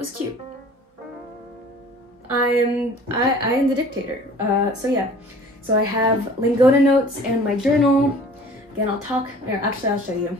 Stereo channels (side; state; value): both; normal; correlation 0.47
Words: cute. I am the dictator. So yeah, so I have Lingoda notes and my journal. Again, I'll show you.